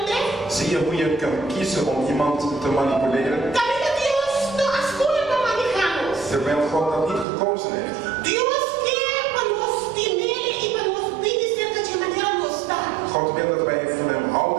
Zie je hoe je kan kiezen om iemand te manipuleren, Também Deus não escolhe para manejar-nos. terwijl God dat niet gekozen heeft? Deus quer para nós temer e para nós obedecer de maneira nos dá. God wil dat wij van hem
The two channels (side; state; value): left; drops out; at 7.2 s